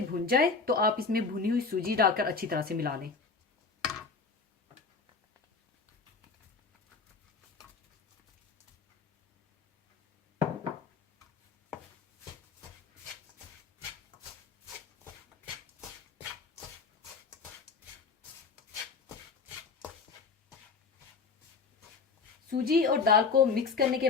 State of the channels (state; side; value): quieter; right; 4.8 dB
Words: भुन जाए तो आप इसमें भुनी हुई सूजी डालकर अच्छी तरह से मिला लें। सूजी और दाल को मिक्स करने के